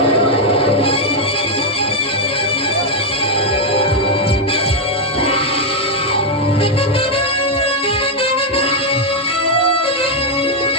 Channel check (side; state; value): both; normal; correlation 0.01